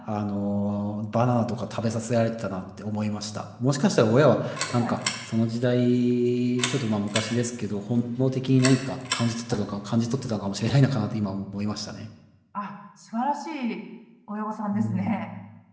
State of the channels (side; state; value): both; identical; correlation 1.00